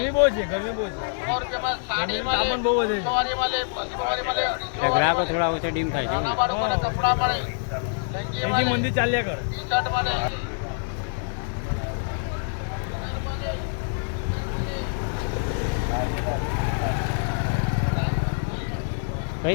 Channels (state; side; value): silent; right; digital silence